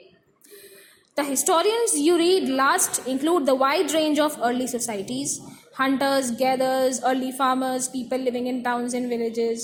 the historians you read last include the wide range of early societies, hunters, gathers, early farmers, people living in towns and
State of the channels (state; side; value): identical; both; correlation 1.00